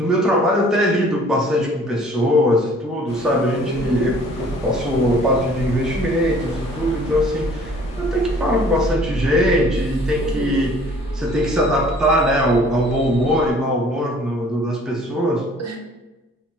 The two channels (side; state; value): both; normal; correlation 0.54